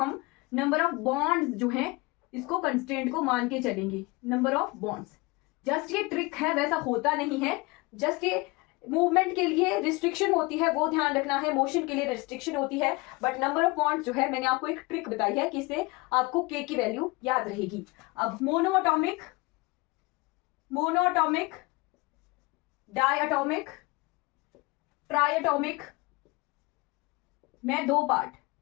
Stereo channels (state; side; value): quieter; right; 24.4 dB